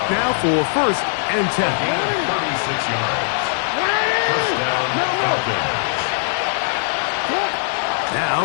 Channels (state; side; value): silent; right; 60 dB below the other